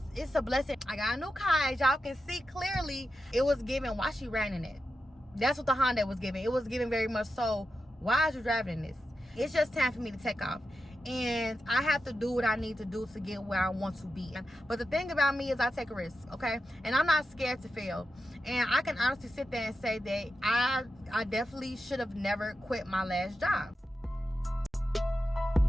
it's a blessing. I got a new car, as y'all can see clearly. It was giving, why she ran in it? That's what the Honda was giving. It was giving very much so, why is you driving in this? It's just time for me to take off. And I have to do what I need to do to get where I want to be. But the thing about me is I take a risk, okay? And I'm not scared to fail. And I can honestly sit there and say that I definitely should have never quit my last job.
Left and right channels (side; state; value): both; normal; correlation 0.89